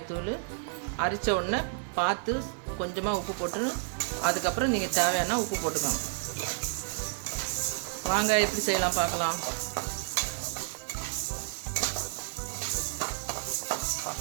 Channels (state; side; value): silent; left; digital silence